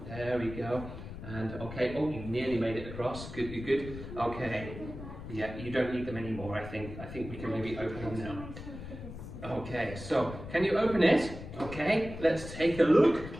There we go. And okay, oh, you nearly made it across. Good, good, good. Okay. Yeah, you don't need them anymore, I think. I think we can maybe open them now. Okay, so can you open it? Okay, let's take a look.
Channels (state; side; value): noise; left; rumble, 11 dB below the sound